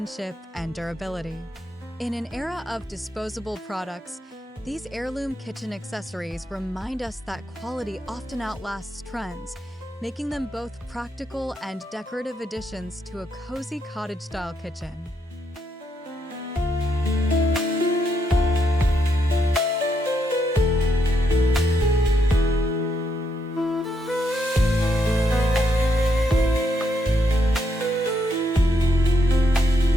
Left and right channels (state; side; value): normal; both; correlation 0.78